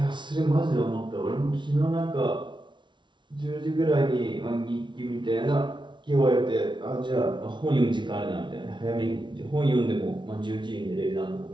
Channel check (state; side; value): late; left; 0.23 ms